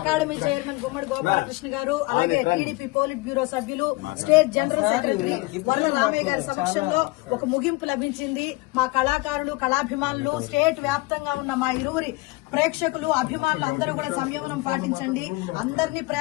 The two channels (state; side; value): quieter; right; 23.0 dB